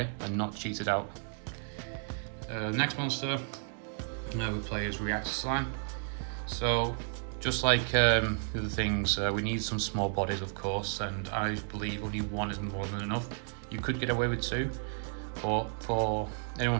and not cheat it out. Next monster we play is Reactor Slime. So, just like the other things, we need some small bodies, of course, and I believe only one is more than enough. You could get away with two, but for anyone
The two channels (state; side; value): silent; left; 56 dB below the other